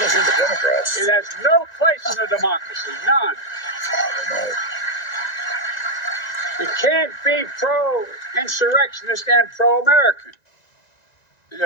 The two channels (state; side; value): late; right; 1.9 ms